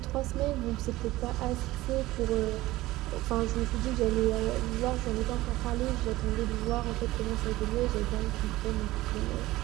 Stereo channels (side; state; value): left; quieter; 17.7 dB